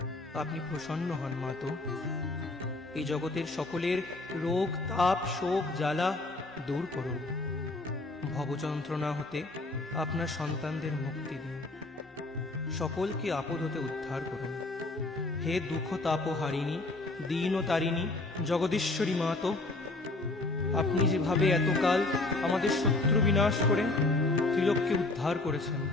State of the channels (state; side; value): quieter; right; 3.0 dB